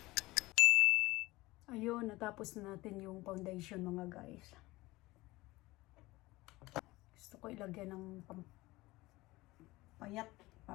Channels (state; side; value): quieter; right; 19.9 dB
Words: Ayun, natapos na natin yung foundation mga guys. Gusto ko ilagyan ng payat.